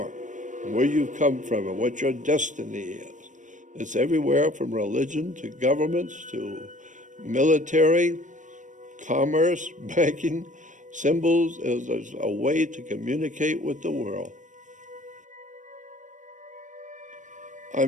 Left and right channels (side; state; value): left; late; 0.37 ms